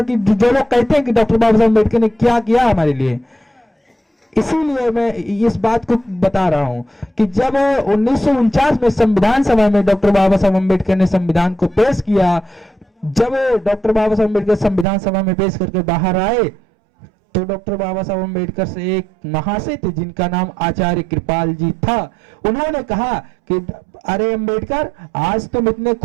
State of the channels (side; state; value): left; drops out; at 14.9 s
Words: कि जो लोग कहते हैं कि डॉक्टर बाबा साहब अम्बेडकर ने क्या किया हमारे लिए, इसीलिए मैं इस बात को बता रहा हूं कि जब 1949 में संविधान सभा में डॉक्टर बाबा साहब अम्बेडकर ने संविधान को पेश किया, जब डॉक्टर बाबा साहब अम्बेडकर संविधान सभा में पेश करके बाहर आए, तो डॉक्टर बाबा साहब अम्बेडकर से एक महाशय थे जिनका नाम आचार्य कृपाल जी था। उन्होंने कहा कि अरे अम्बेडकर, आज तुम इतने